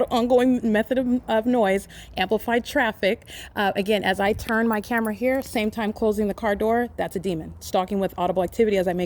method of noise, amplified traffic. Again, as I turn my camera here, same time closing the car door, that's a demon. Stalking with audible activity as I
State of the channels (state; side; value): identical; both; correlation 1.00